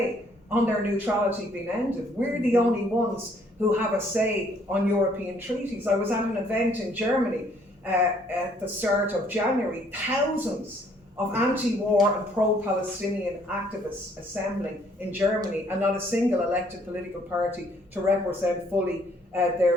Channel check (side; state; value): both; normal; correlation 0.64